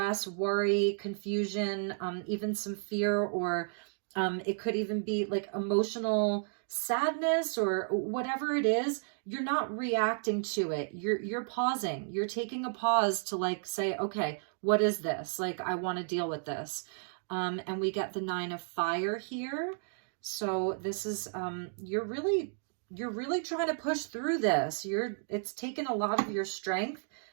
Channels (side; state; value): left; silent; digital silence